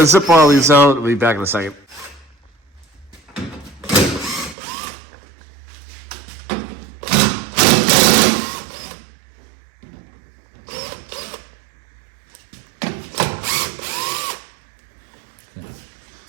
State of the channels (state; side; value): drops out; left; at 4.5 s